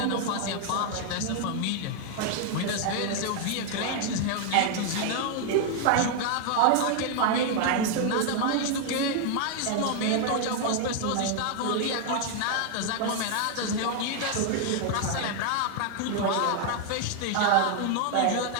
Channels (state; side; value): different; both; correlation 0.00